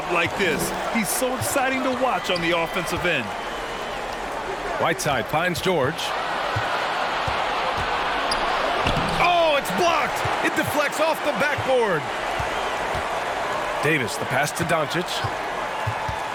like this. He's so exciting to watch on the offensive end. Whiteside finds George. Oh, it's blocked. It deflects off the backboard. Davis, the pass to Doncic.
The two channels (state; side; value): identical; both; correlation 1.00